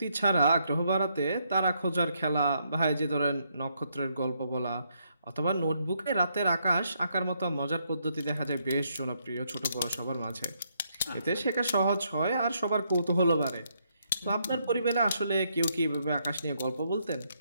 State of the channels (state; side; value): inverted; both; correlation -0.75